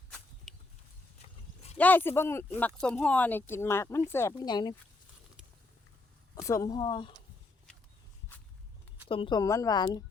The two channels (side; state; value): right; quieter; 3.2 dB